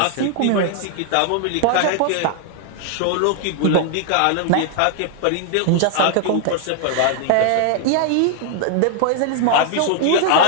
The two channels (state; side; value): different; both; correlation 0.00